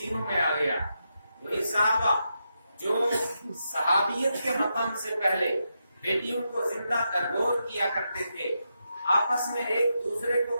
میں آ گیا۔ وہی صحابہ جو صحابیت کے مقام سے پہلے بیٹیوں کو زندہ درگور کیا کرتے تھے، آپس میں ایک دوسرے کو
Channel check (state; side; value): inverted; both; correlation -0.85